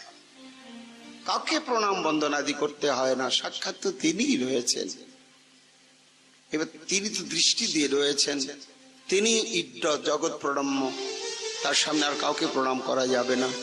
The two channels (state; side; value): identical; both; correlation 1.00